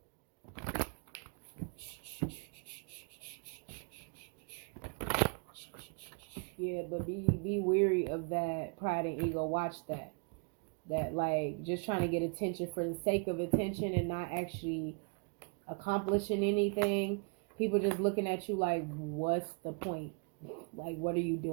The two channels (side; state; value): left; quieter; 36.8 dB